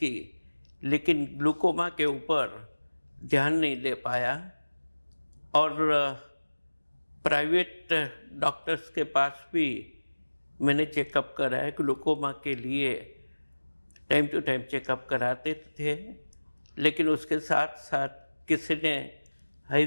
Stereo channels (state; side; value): inverted; both; correlation -1.00